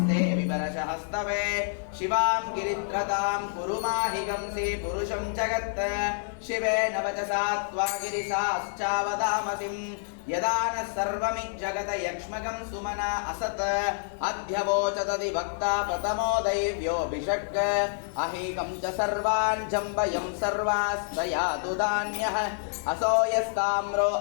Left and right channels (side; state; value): right; silent; digital silence